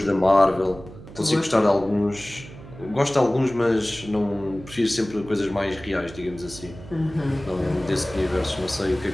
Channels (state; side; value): noise; right; hum, 16 dB below the sound